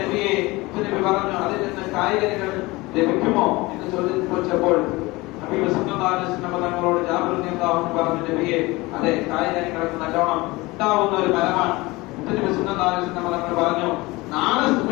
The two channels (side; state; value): right; quieter; 22.0 dB